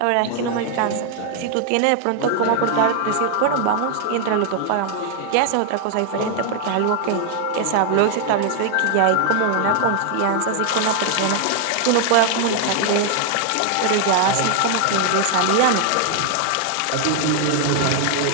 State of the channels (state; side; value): different; both; correlation 0.00